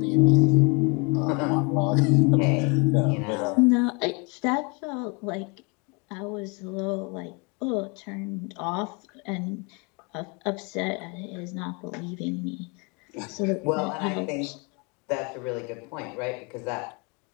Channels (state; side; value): quieter; right; 31.5 dB